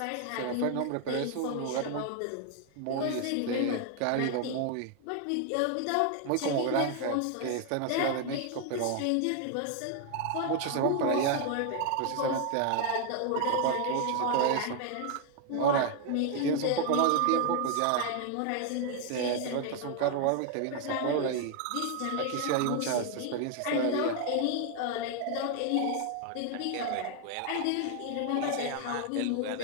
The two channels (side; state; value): both; different; correlation 0.00